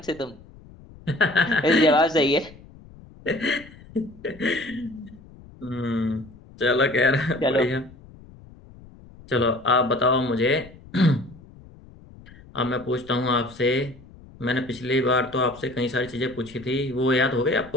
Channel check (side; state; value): left; noise; rumble, 21 dB below the sound